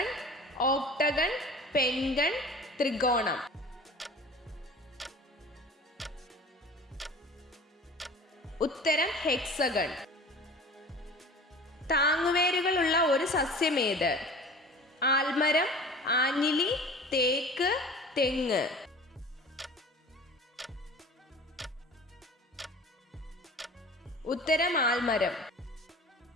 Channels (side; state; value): both; normal; correlation 0.41